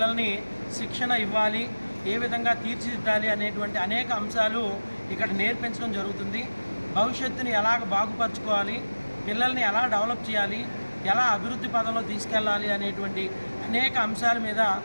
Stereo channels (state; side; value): inverted; both; correlation -1.00